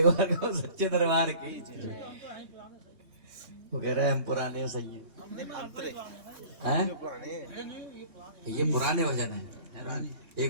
बार को सच्चे दरबार की, वो कह रहे हैं हम पुराने सही है। ये पुराने वजन है।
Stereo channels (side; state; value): left; late; 3.2 ms